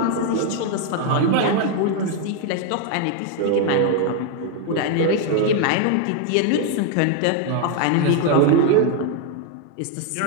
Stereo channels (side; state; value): both; different; correlation 0.01